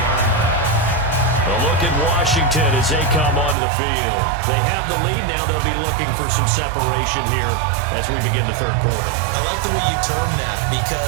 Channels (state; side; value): drops out; left; at 3.6 s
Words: A look at Washington as they come onto the field. They have the lead now. They'll be looking for some separation here as we begin the third quarter. I like the way you term that